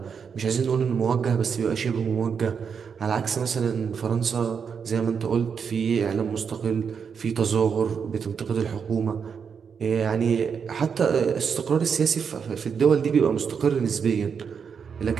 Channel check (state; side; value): quieter; left; 6.5 dB